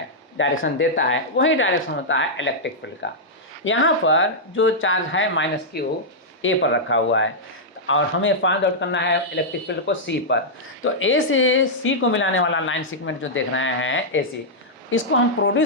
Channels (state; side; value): normal; both; correlation -0.08